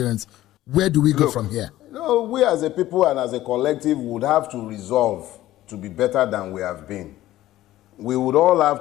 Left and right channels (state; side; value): quieter; right; 15.0 dB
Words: Where do we go from here? No, we as a people and as a collective would have to resolve to be better than we have been. We would all